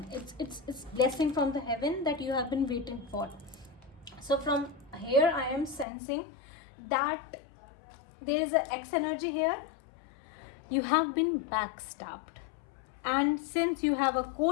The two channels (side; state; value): right; drops out; at 5.9 s